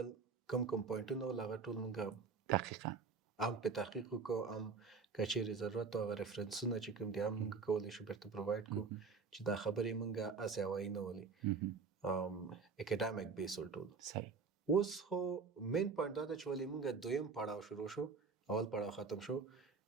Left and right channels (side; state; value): left; quieter; 5.0 dB